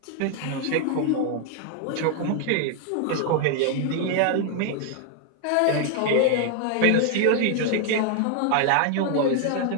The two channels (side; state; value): both; different; correlation 0.00